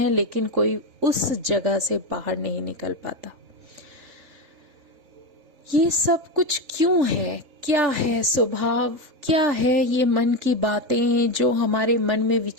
लेकिन कोई उस जगह से बाहर नहीं निकल पाता। ये सब कुछ क्यों है? क्या है स्वभाव? क्या है ये मन की बातें जो हमारे मन में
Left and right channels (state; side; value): late; left; 3.8 ms